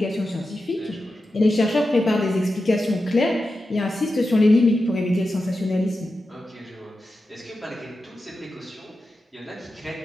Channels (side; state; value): both; normal; correlation 0.91